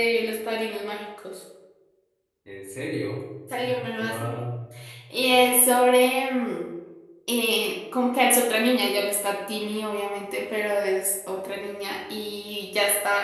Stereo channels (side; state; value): both; identical; correlation 1.00